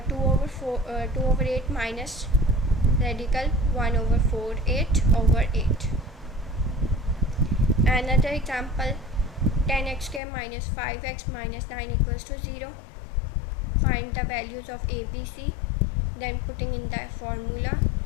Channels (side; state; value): right; drops out; at 10.2 s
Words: over 8 minus radical 1 over 48 over 8. Another example, 10x square minus 5x minus 9 equals to 0. Find the values of a, b, c, then putting in the formula,